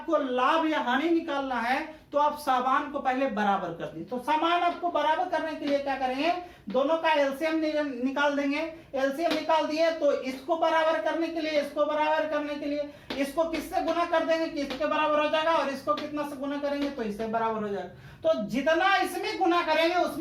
लाभ या हानि निकालना है, तो आप सामान को पहले बराबर कर दी। तो सामान आपको बराबर करने के लिए क्या करेंगे, दोनों का एलसीएम निकाल देंगे। एलसीएम निकाल दिए तो इसको बराबर करने के लिए, इसको बराबर करने के लिए इसको किससे गुना कर देंगे कि इसके बराबर हो जाएगा, और इसको कितना से गुना करेंगे तो इससे बराबर हो जाएगा। तो जितना इसमें गुना करेंगे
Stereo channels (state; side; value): identical; both; correlation 1.00